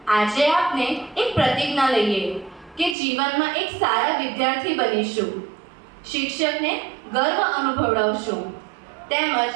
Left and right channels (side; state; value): left; drops out; at 3.0 s